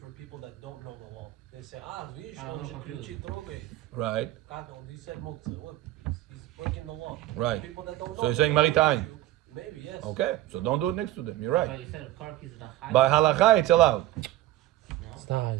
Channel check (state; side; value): quieter; left; 15.2 dB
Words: people that don't know the law. They say, видишь, он же ключи трогает. Right. He said muktzah. Look, he's breaking the law. Right. People that don't know. So you're saying maritime? Maybe, yes. Okay, so don't do it next to them. You're right. But you said car keys is a high. By halacha, it's allowed. It's